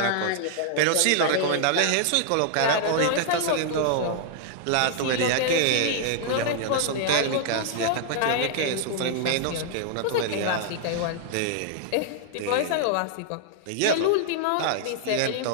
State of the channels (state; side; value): different; both; correlation -0.01